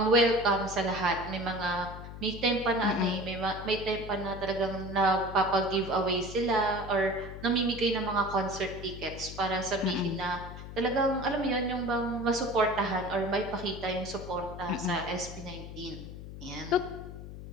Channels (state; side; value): noise; left; hum, 11 dB below the sound